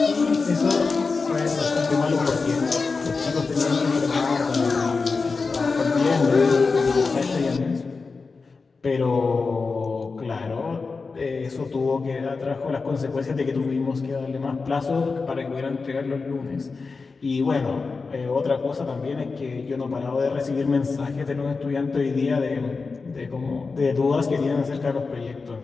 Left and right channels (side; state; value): right; quieter; 4.4 dB